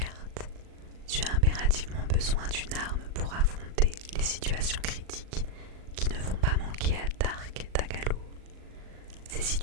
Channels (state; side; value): late; left; 38 ms